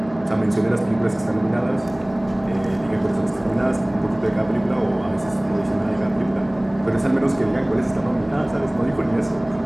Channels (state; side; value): noise; right; hum, 22 dB below the sound